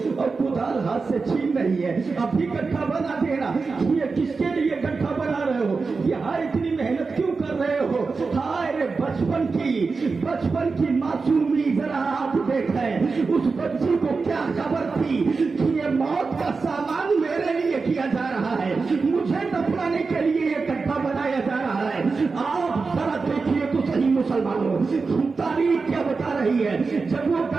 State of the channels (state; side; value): quieter; left; 4.4 dB